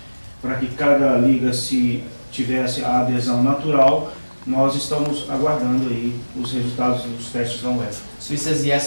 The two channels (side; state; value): both; inverted; correlation -1.00